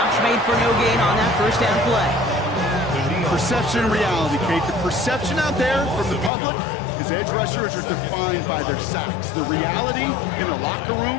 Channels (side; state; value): right; drops out; at 6.3 s